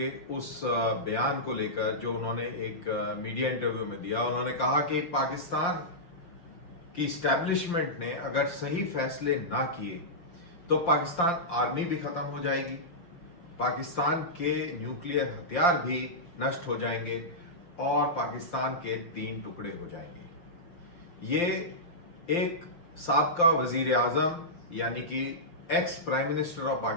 उस बयान को लेकर जो उन्होंने एक मीडिया इंटरव्यू में दिया। उन्होंने कहा कि पाकिस्तान की स्टैब्लिशमेंट ने अगर सही फैसले ना किए तो पाकिस्तान आर्मी भी खत्म हो जाएगी, पाकिस्तान के न्यूक्लियर हथियार भी नष्ट हो जाएंगे और पाकिस्तान के 3 टुकड़े हो जाएंगे। ये एक साबका वजीर आजम यानी कि ex prime minister of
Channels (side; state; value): right; late; 5.7 ms